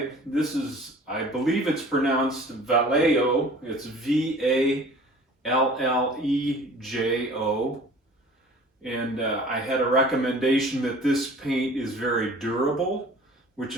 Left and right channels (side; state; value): both; normal; correlation 0.46